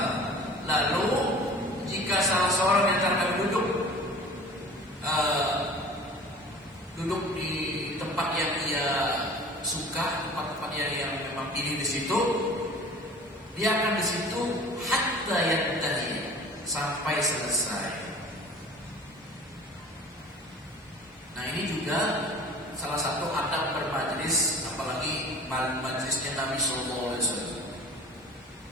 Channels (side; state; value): both; normal; correlation 0.43